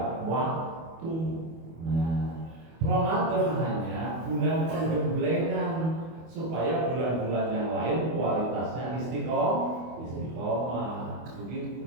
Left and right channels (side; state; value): left; late; 24 ms